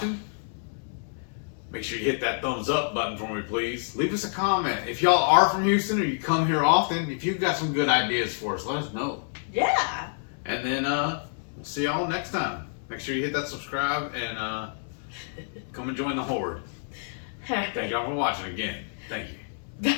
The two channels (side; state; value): right; silent; 60 dB below the other